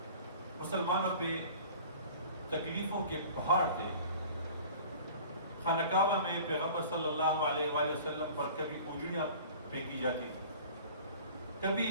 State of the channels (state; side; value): inverted; both; correlation -0.44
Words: مسلمانوں پہ تکلیفوں کے پہاڑ تھے۔ خانہ کعبہ میں پیغمبر صلی اللہ علیہ وآلہ وسلم پر کبھی اونجڑیاں پھینکی جاتی تھی، کبھی